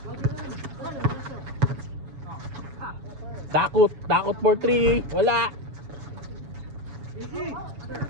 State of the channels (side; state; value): left; late; 7.1 ms